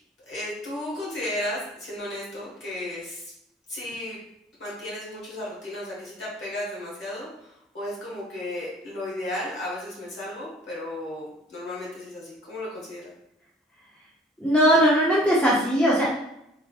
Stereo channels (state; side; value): normal; both; correlation 0.51